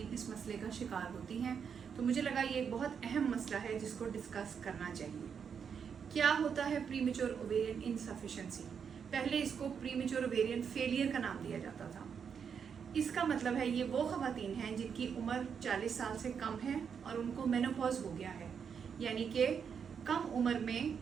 इस मसले का शिकार होती हैं। तो मुझे लगा ये एक बहुत अहम मसला है जिसको डिस्कस करना चाहिए। क्या होता है प्रीमेच्योर ओवेरियन इनसफिशिएंसी? पहले इसको प्रीमेच्योर ओवेरियन फेलियर का नाम दिया जाता था। इसका मतलब है ये वो ख़वातीन हैं जिनकी उम्र 40 साल से कम है और उनको मेनोपॉज हो गया है, यानी कि कम उम्र में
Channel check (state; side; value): quieter; left; 6.9 dB